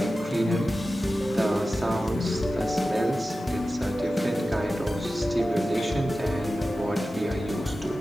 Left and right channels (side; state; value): both; normal; correlation 0.94